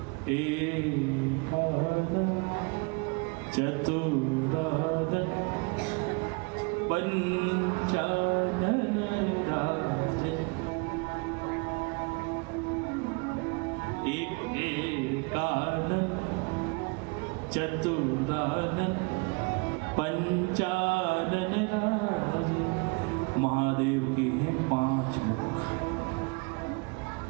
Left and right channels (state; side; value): quieter; left; 30.9 dB